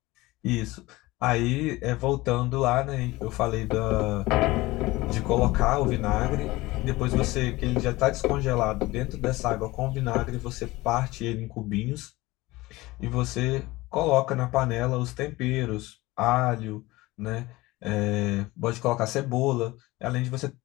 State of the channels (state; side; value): quieter; right; 19.9 dB